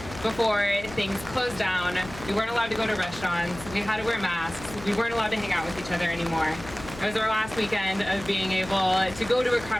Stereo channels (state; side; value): noise; left; hum, 14 dB below the sound